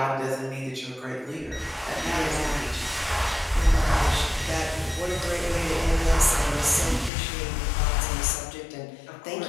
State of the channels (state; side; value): drops out; right; at 7.1 s